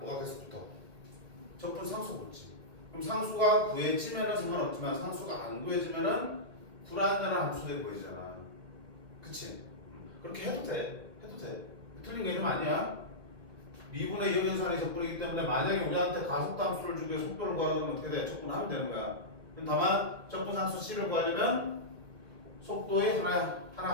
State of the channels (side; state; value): left; late; 1.0 ms